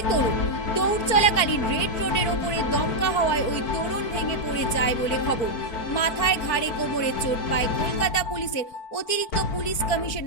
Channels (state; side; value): late; right; 4.5 ms